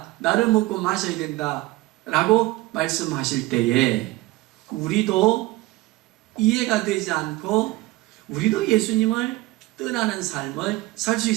나를 먹고 마셔야 된다 라고 말씀하실 때에 우리도 이해가 되지 않고 우리도 예수님을 떠나는 삶을 살 수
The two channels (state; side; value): quieter; left; 18.9 dB